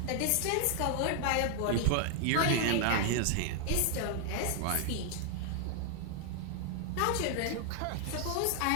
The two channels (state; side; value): different; both; correlation 0.00